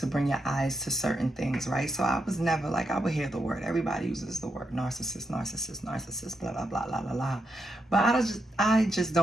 bring your eyes to certain things, right? So I was never like, I would hear the word. Everybody uses the word narcissist, narcissist, narcissist, blah, blah, blah, blah, blah, blah. But I just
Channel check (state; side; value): normal; both; correlation 0.83